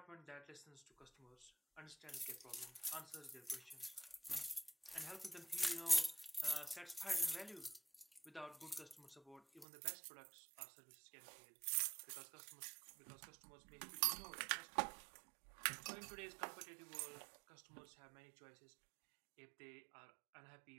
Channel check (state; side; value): drops out; left; at 9.7 s